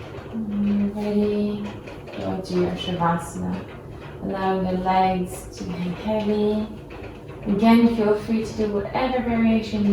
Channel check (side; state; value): both; identical; correlation 1.00